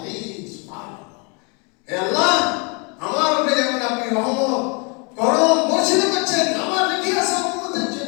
সুবহানাল্লাহ। হে আল্লাহ, আমার উপরে যেমন আপনি রহমত করম বর্ষিত করছেন, আমার রেখে আসা উম্মতের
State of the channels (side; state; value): right; quieter; 33.1 dB